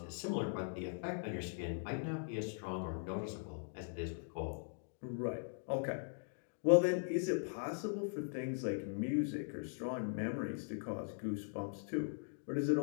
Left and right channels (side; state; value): right; silent; digital silence